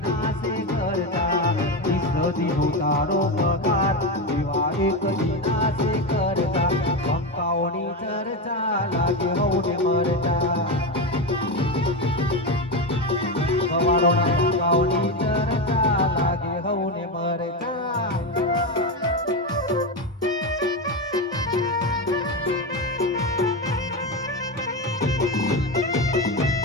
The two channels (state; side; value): normal; both; correlation 0.14